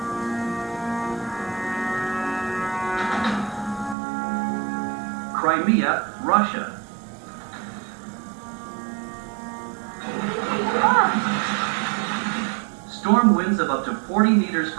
Crimea, Russia. Storm winds of up to 40 meters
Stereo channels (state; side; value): drops out; left; at 4.0 s